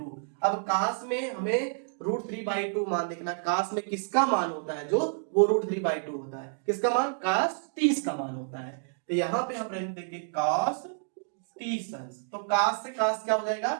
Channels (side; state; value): left; silent; digital silence